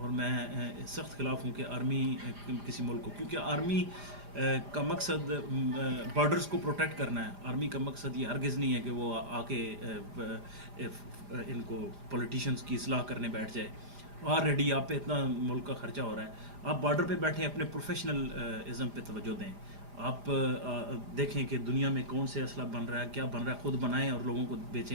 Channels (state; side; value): late; left; 4.9 ms